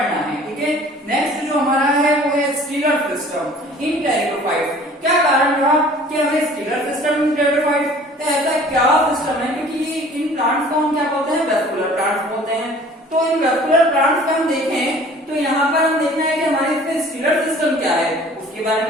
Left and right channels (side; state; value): both; normal; correlation 0.49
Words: है, ठीक है। नेक्स्ट जो हमारा है वो है स्टीलर सिस्टम इन टेरिडोफाइट्स। क्या कारण रहा कि हमें स्टीलर सिस्टम इन टेरिडोफाइट्स, तो ऐसा क्या सिस्टम है, क्योंकि इन प्लांट्स को हम क्या बोलते हैं, वेस्कुलर प्लांट्स बोलते हैं। तो इन वेस्कुलर प्लांट्स में हम देखें तो यहाँ पर हम देखना है कि हमारे इसमें स्टीलर सिस्टम क्या है, उसके बारे